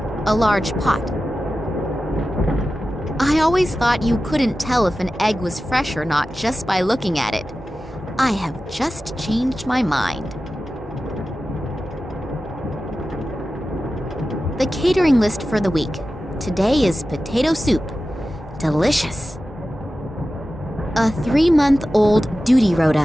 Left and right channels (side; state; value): both; normal; correlation 0.94